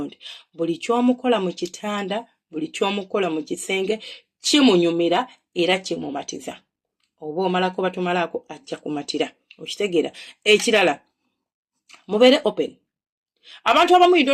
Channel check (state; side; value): identical; both; correlation 1.00